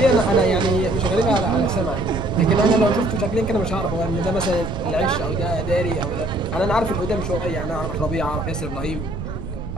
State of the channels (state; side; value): noise; right; rumble, 8 dB below the sound